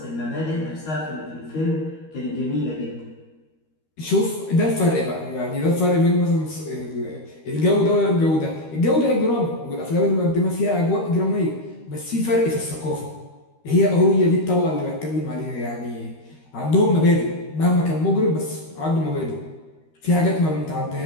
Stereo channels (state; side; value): late; right; 13 ms